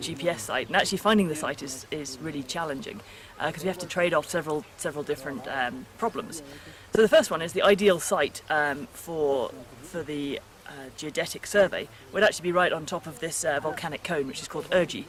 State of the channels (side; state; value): both; identical; correlation 1.00